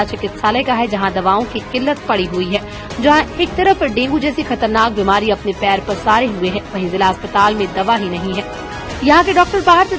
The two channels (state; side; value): identical; both; correlation 1.00